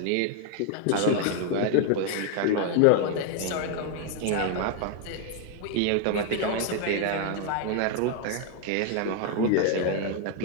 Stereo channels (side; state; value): both; different; correlation 0.01